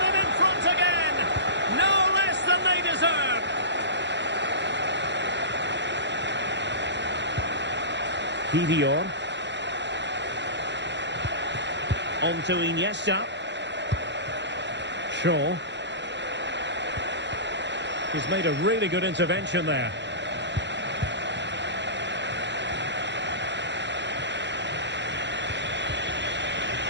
in front again. No less than they deserve. Kivior. On to Iniesta. Shaw. He's made a really good intervention there.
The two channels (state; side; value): late; left; 0.52 ms